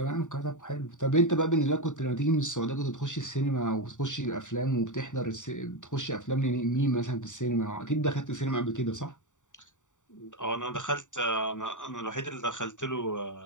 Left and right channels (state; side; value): late; right; 0.86 ms